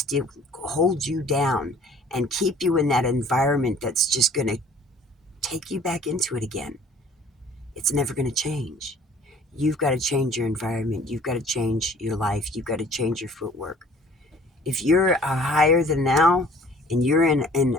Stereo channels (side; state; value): both; normal; correlation 0.52